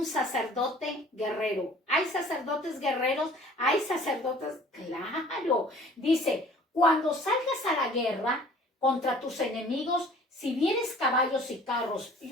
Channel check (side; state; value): both; normal; correlation 0.50